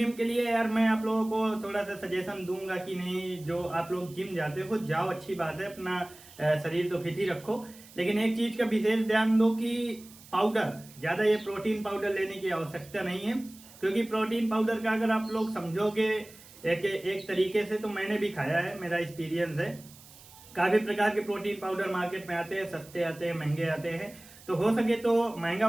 के लिए यार मैं आप लोगों को थोड़ा सा सजेशन दूंगा कि नहीं, जो आप लोग जिम जाते हो जाओ, अच्छी बात है, अपना शरीर तो फिट ही रखो, लेकिन एक चीज का विशेष ध्यान दो कि पाउडर, ज्यादा ये प्रोटीन पाउडर लेने की आवश्यकता नहीं है। क्योंकि प्रोटीन पाउडर का अगर आप लोग समझोगे एक तरीके से, तो मैंने भी खाया है, मेरा एक्सपीरियंस है। काफी प्रकार के प्रोटीन पाउडर मार्केट में आते हैं, सस्ते आते हैं, महंगे आते हैं। तो हो सके तो महंगा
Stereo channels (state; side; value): noise; right; hiss, 21 dB below the sound